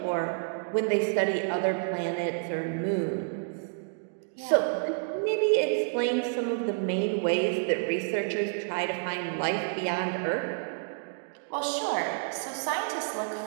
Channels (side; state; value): left; silent; digital silence